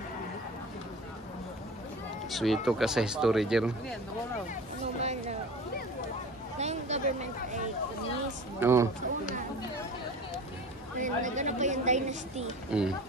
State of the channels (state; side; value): normal; both; correlation 0.38